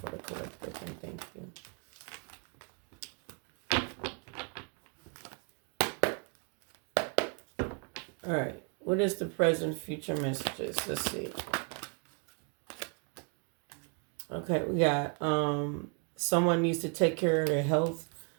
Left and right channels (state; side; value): quieter; left; 37.8 dB